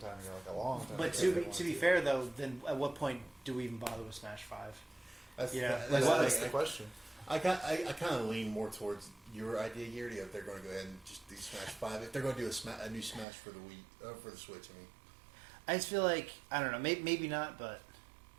ago, like a long time. But ago. to be fair though, then at what point do we even bother with Smash 5? that's, Yeah, that's like, the what- thing. That's the question. I kind of lean more towards your idea, Garrity, if they're going to go ahead and just do Smash 5. If they're going to do a new Smash for the for the Switch, I mean. I just feel like I don't know, maybe not, but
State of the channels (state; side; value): drops out; left; at 13.2 s